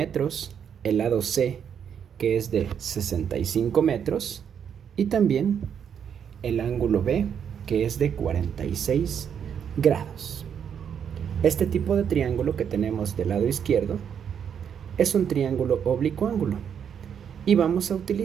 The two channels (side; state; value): left; quieter; 8.0 dB